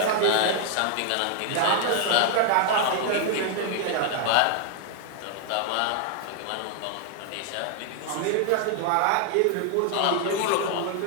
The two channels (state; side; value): different; both; correlation 0.00